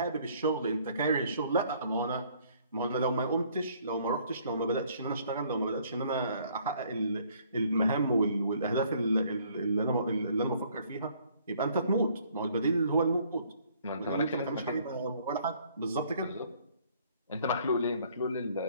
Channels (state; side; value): inverted; both; correlation -0.62